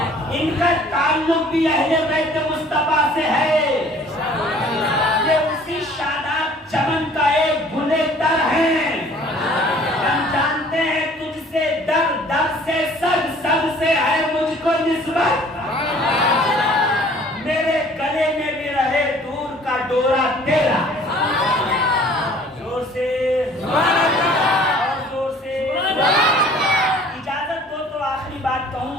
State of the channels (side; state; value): both; normal; correlation 0.53